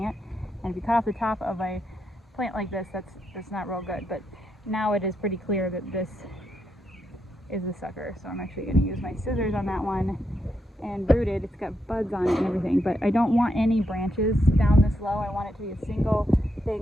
And if you cut off the top of a plant like this, that's not real good. But now it is pretty clear that this is the sucker. So I'm actually going to use my scissors on that one and root it. It's got buds on it and everything, but I don't want any branches down this low. I want it to be a single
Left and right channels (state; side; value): normal; both; correlation 0.81